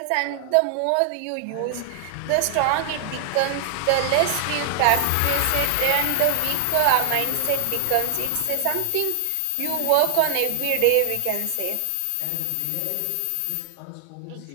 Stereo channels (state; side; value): different; both; correlation 0.00